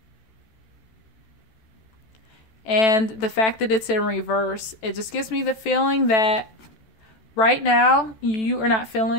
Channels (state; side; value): late; right; 14 ms